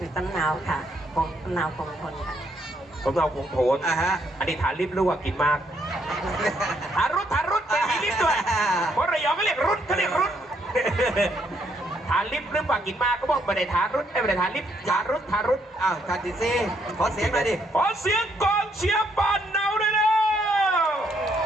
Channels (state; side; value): normal; both; correlation 0.72